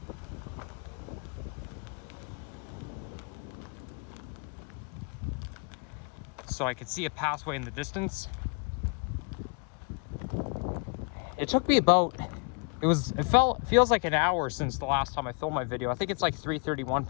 So I could see a pathway in the distance. It took me about, feels like an hour since the last time I filmed my video. I think it's like 3:31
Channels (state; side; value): quieter; right; 34.8 dB